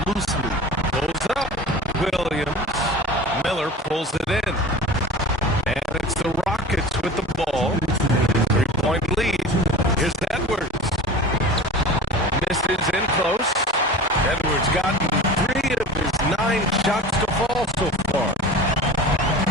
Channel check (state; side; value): normal; both; correlation 0.36